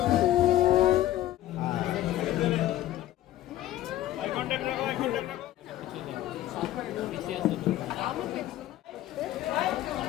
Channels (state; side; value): quieter; right; 13.8 dB